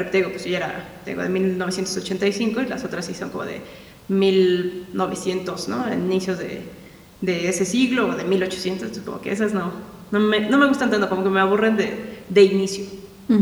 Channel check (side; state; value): both; identical; correlation 1.00